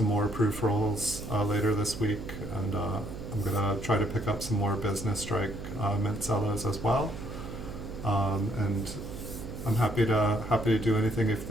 more proof rolls later this week, and I'm gonna try to pick up some more Business Strike Mint Cellos as well. And I'm happy to do anything. If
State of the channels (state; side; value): noise; right; hum, 9 dB below the sound